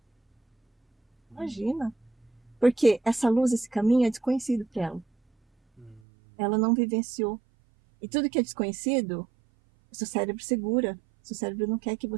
Imagina. Porque essa luz, esse caminho é desconhecido para ela. Ela não vivenciou. E tudo que é desconhecido, o seu cérebro segura. O seu cérebro não quer que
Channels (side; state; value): left; drops out; at 6.0 s